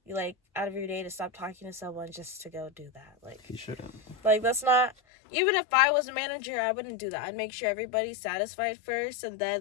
your day to stop talking to someone just to go do that. Like, he shouldn't. Like, that's not, even if I was a manager, I wouldn't do that. I'd make sure everybody's satisfied first, and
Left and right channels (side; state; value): right; drops out; at 5.0 s